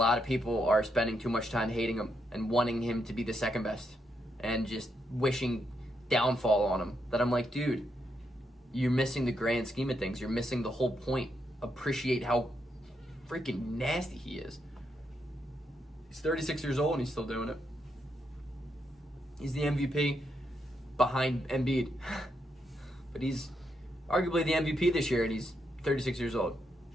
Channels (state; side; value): normal; both; correlation 0.80